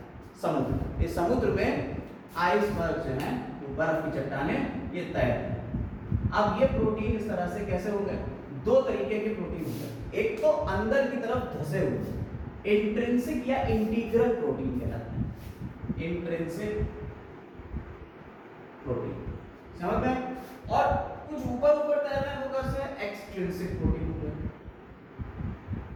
समुद्र। इस समुद्र में आइसबर्ग जो है, बर्फ की चट्टानें, ये तैर रहे हैं। अब ये प्रोटीन इस तरह से कैसे हो गए, दो तरीके के प्रोटीन होते हैं। एक तो अंदर की तरफ धसे हुए इंट्रिंसिक या इंटीग्रल प्रोटीन कहलाते हैं, इंट्रिंसिक प्रोटीन, समझ में। और कुछ ऊपर ऊपर तैर रहे हैं वो कैसे, एक्सट्रिंसिक प्रोटीन हो गए,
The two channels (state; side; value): identical; both; correlation 1.00